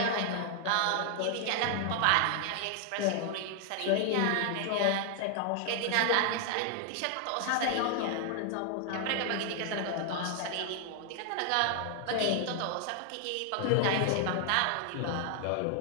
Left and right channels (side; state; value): both; different; correlation 0.00